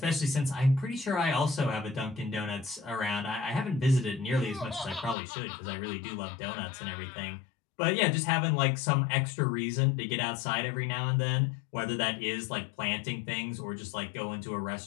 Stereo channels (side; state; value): right; drops out; at 5.2 s